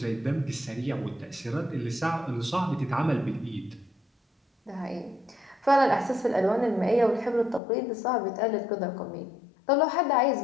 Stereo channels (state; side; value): drops out; right; at 7.6 s